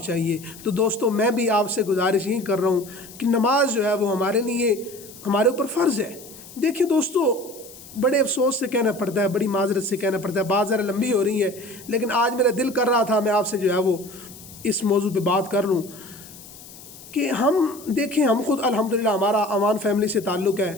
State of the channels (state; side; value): noise; left; hiss, 18 dB below the sound